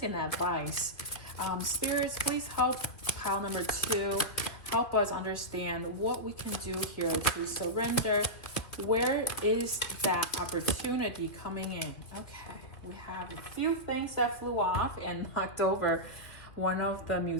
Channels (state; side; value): late; right; 2.8 ms